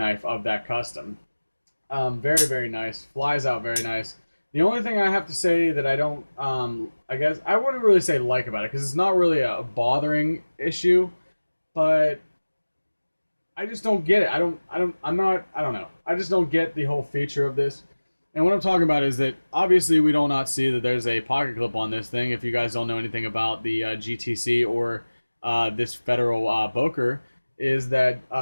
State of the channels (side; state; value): both; inverted; correlation -1.00